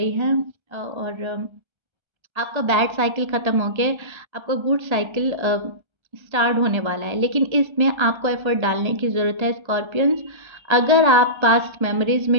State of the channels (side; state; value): left; late; 1.3 ms